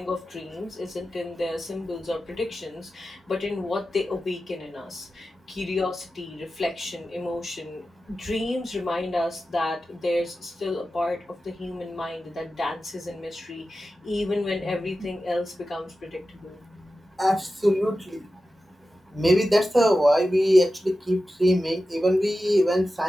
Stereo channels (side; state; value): both; normal; correlation 0.93